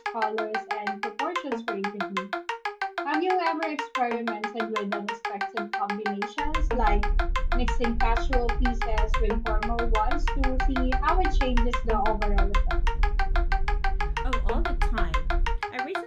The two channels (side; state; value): both; identical; correlation 1.00